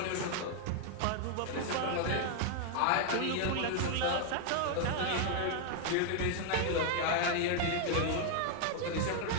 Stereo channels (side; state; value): both; different; correlation 0.01